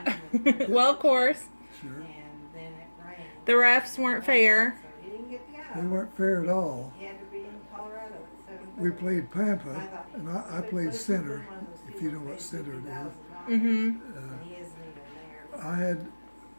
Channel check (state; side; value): inverted; both; correlation -1.00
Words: Well, of course, Sure. And then it rained. the refs weren't fair. So he didn't get to They go. weren't fair at all. He had to be in Colorado at 7:30. We played Pampa, and I played center, if you know what center it is. Mm-hmm. And he isn't even there.